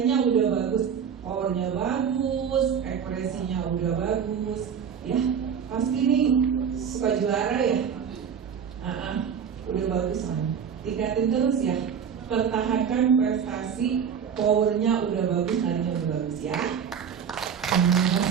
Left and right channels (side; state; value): left; quieter; 7.5 dB